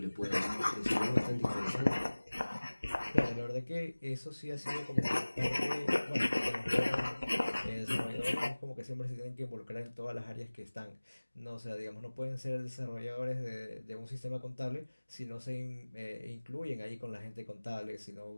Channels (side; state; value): both; inverted; correlation -1.00